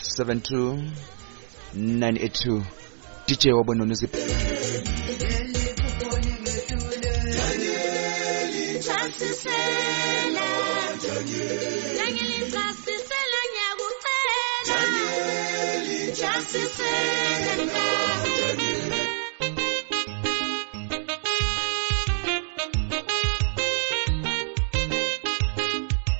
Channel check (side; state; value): left; silent; digital silence